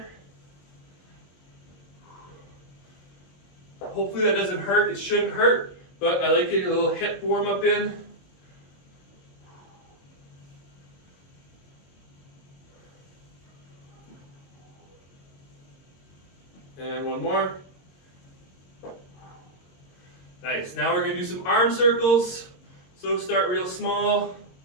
Hopefully that doesn't hurt. It shouldn't hurt, but I like getting a little hip warm up in. And one more. Nice. Now we're going to do some arm circles. So start real small.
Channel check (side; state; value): right; late; 22 ms